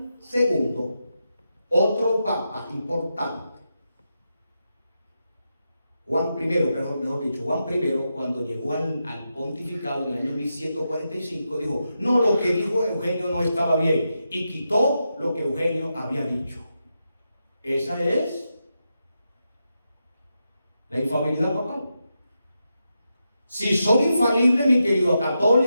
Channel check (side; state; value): both; inverted; correlation -0.87